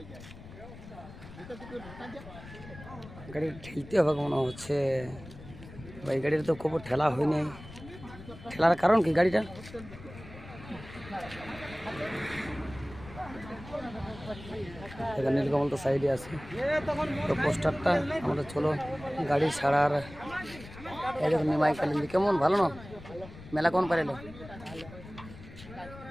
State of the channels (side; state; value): left; noise; rumble, 16 dB below the sound